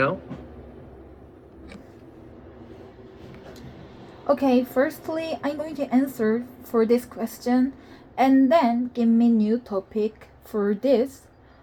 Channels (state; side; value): identical; both; correlation 1.00